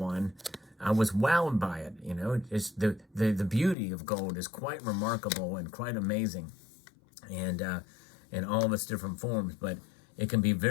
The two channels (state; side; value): drops out; right; at 3.8 s